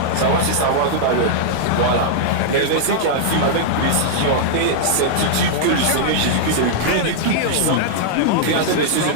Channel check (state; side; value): different; both; correlation -0.01